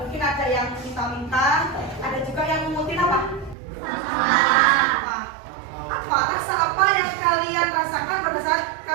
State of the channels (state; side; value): drops out; left; at 3.6 s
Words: mungkin ada yang minta-minta, ada juga yang mengutin apa? Apa rasa apa yang kalian rasakan pada saat